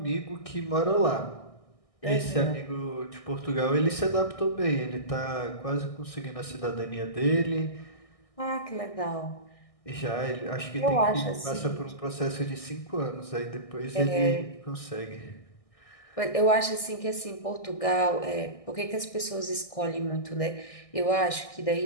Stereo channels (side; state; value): right; late; 1.6 ms